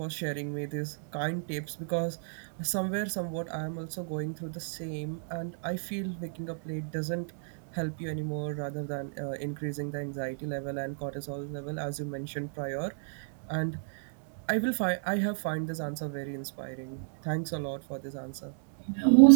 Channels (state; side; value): silent; left; digital silence